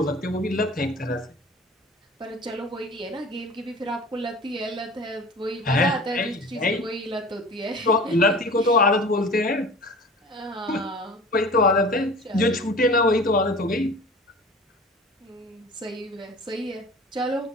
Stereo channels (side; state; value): both; normal; correlation 0.40